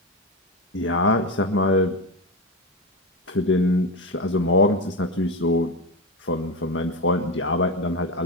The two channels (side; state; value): both; normal; correlation 0.16